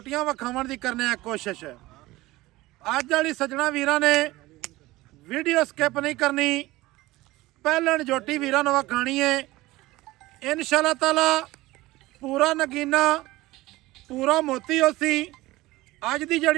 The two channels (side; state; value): left; quieter; 18.8 dB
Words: विखाउण दी करने आ कोशिश। अज वाली सज्जणा वीरां ने वीडियो स्किप नहीं करनी, पहलन जोटी वीरां नूं विखाणी है। इंशाअल्लाह ताला पूरा नगीना पूरा मोती होसी। अज की